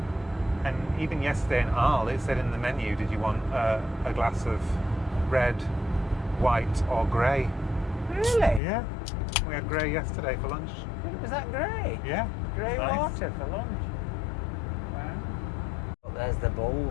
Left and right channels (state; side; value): drops out; right; at 8.6 s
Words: And even yesterday in Arles, it said in the menu, did you want a glass of red, white or grey? Really? Yeah. We had grey yesterday for lunch. Was that grey? Yeah. Grey Nice. water for lunch. Wow. Well, there's the